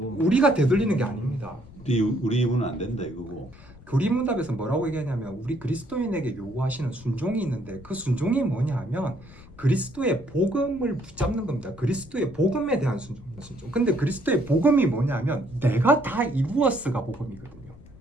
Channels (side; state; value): left; noise; rumble, 20 dB below the sound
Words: 되돌리는 게 아닙니다. 우리 입은 안 된다 이거고. 교리문답에서 뭐라고 얘기하냐면 우리 그리스도인에게 요구하시는 순종이 있는데 그 순종이 뭐냐 하면 그리스도의 복음을 붙잡는 겁니다. 그리스도의 복음에 대한 순종. 근데 그리스도의 복음이 뭐냐면 내가 다 이루었어가 복음이거든요.